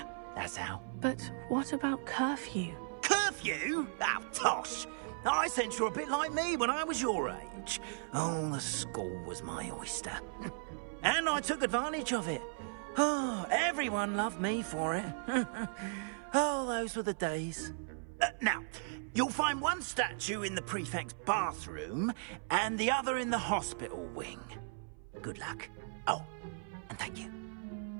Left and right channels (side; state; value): left; silent; 53 dB below the other